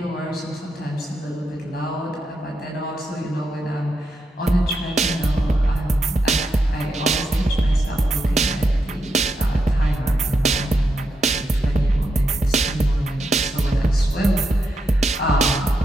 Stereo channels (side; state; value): both; normal; correlation 0.84